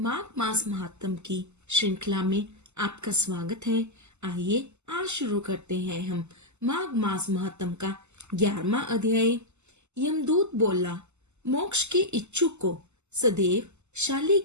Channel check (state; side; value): late; left; 0.83 ms